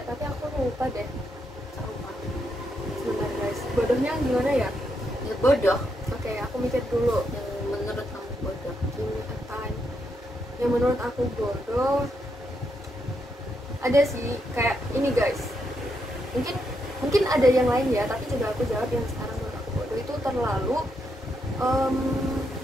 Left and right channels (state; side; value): normal; both; correlation 0.80